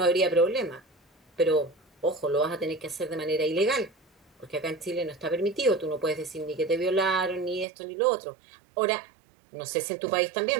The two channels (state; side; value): drops out; left; at 7.7 s